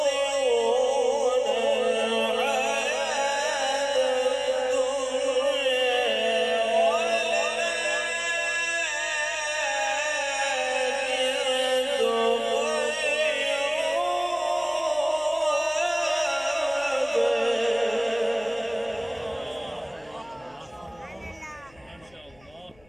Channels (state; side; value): noise; left; hum, 29 dB below the sound